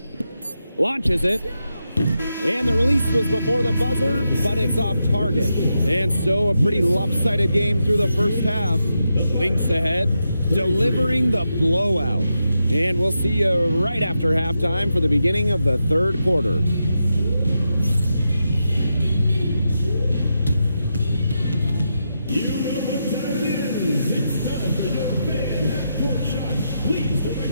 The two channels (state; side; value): inverted; both; correlation -0.86